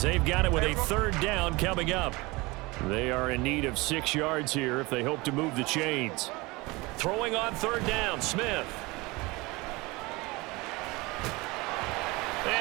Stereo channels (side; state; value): left; quieter; 23.4 dB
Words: they've got it with a third down coming up. They are in need of 6 yards here if they hope to move the chains. Throwing on third down, Smith.